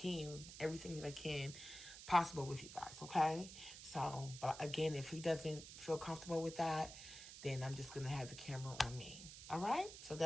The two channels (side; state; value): right; noise; hiss, 12 dB below the sound